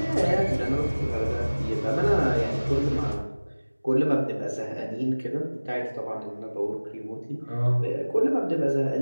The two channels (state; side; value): inverted; both; correlation -1.00